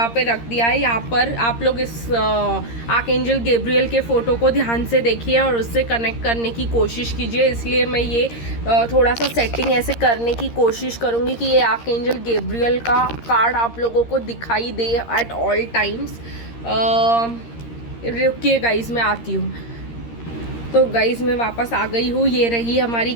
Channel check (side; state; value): right; late; 13 ms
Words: पे रख दिया है। यहाँ पर आप लोग इस आर्कएंजल गैब्रियल के फ़ोटो को ध्यान से देखिए और उससे कनेक्ट करने की कोशिश कीजिए। इसलिए मैं ये थोड़ा सा सेटिंग ऐसे करने की कोशिश करूँगी कि ये आर्कएंजल गैब्रियल का कार्ड आप लोगों को दिखाई दे एट ऑल टाइम्स। रुकिए गाइस, मैं आती हूँ। तो गाइज़ मैं वापस आ गई हूँ। ये रही हमारी